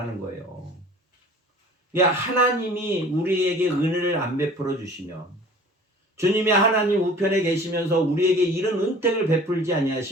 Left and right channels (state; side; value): normal; both; correlation 0.46